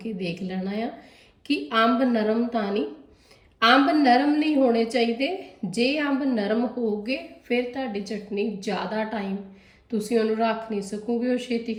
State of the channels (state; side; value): identical; both; correlation 1.00